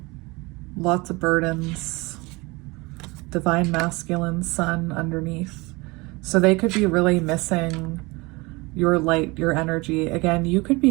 lots of burdens, divine masculine sun underneath. So they could be really missing your light, your energy. Again, you could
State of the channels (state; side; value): quieter; left; 24.5 dB